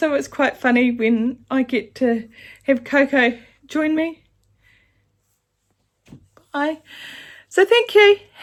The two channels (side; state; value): both; identical; correlation 1.00